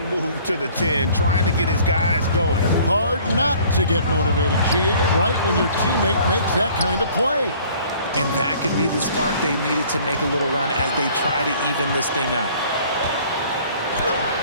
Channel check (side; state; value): both; inverted; correlation -0.53